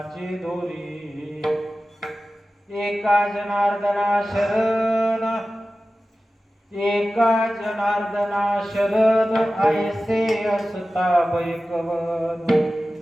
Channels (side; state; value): both; normal; correlation 0.95